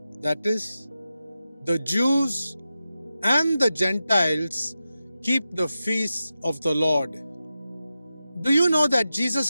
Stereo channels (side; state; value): both; inverted; correlation -0.91